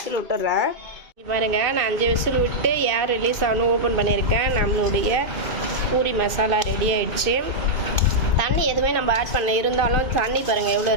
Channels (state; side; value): late; left; 2.5 ms